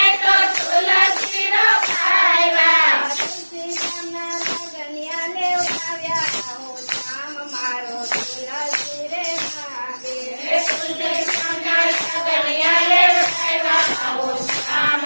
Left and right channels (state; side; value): inverted; both; correlation -1.00